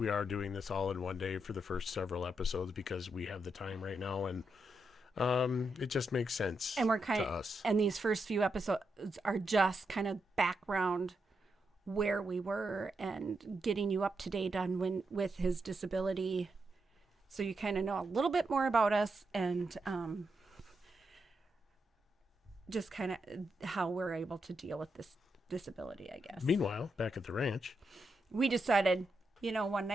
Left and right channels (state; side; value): normal; both; correlation 0.84